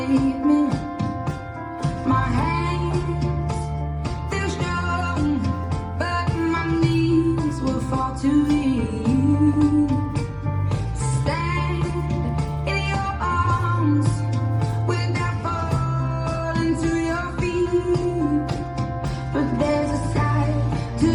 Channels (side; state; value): both; identical; correlation 1.00